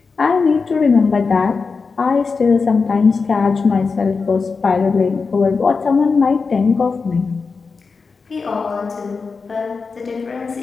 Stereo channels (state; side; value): quieter; right; 4.7 dB